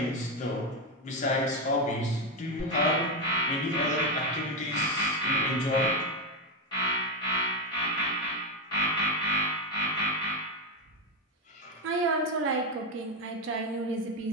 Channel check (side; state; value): both; normal; correlation 0.07